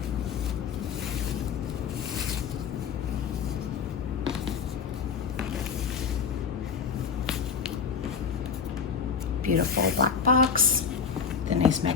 Beautiful black box, the nice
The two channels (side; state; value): right; quieter; 6.3 dB